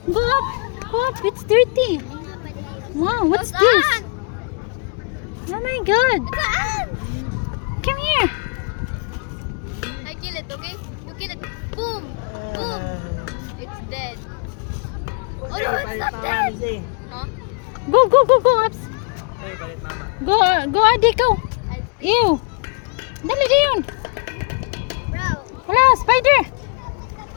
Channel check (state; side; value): quieter; right; 34.4 dB